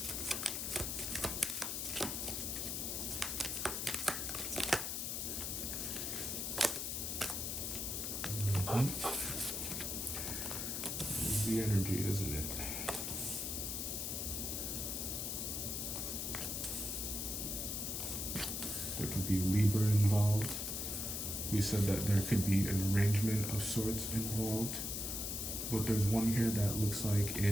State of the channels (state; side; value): noise; left; hiss, 2 dB below the sound